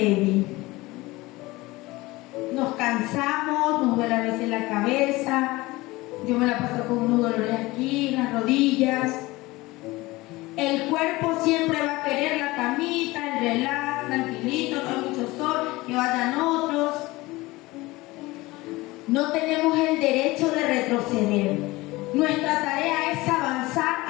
Nos cansamos, nos duele a veces la cabeza, yo me la paso con unos dolores aquí, en las rodillas. El cuerpo siempre va a querer la camita, el relax, tranquilito, no hay mucho sol, que vayan otros. No tenemos el derecho de retroceder. Nuestra tarea es avanzar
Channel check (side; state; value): right; quieter; 20.6 dB